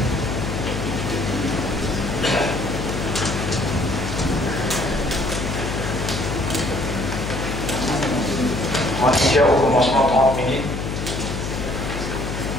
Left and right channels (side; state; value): left; noise; hum, 4 dB below the sound